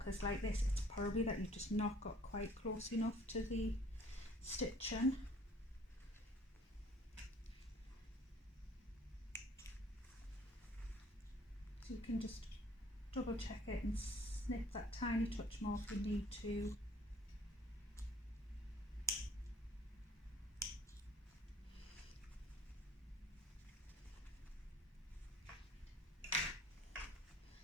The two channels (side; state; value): both; normal; correlation 0.55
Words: like this, it's probably that you've just not got quite close enough to the stitching. So you can just double check it and snip that tiny touch more if you need to.